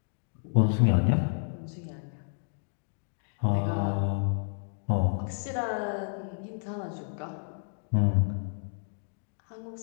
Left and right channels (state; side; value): silent; right; digital silence